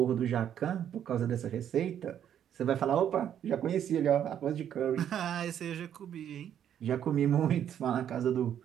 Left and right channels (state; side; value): quieter; left; 9.7 dB